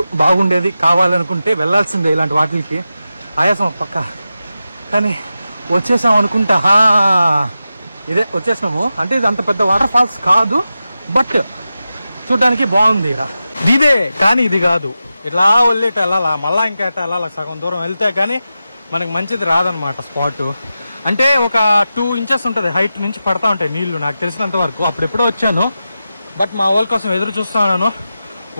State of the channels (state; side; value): inverted; both; correlation -0.92